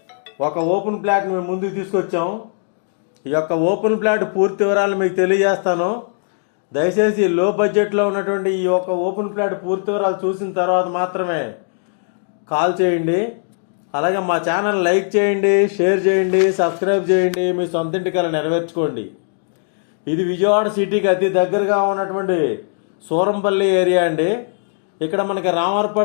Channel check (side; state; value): right; silent; digital silence